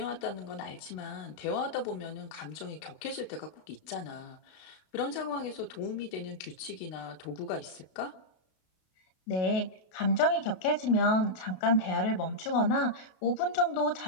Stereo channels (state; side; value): late; right; 32 ms